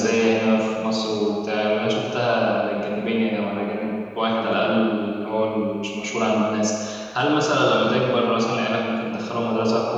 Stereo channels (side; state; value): both; identical; correlation 1.00